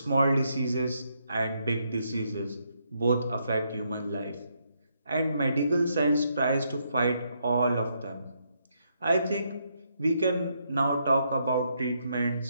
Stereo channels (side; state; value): both; inverted; correlation -0.77